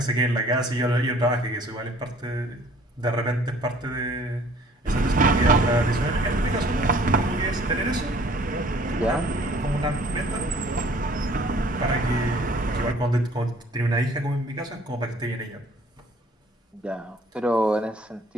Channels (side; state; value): both; normal; correlation 0.55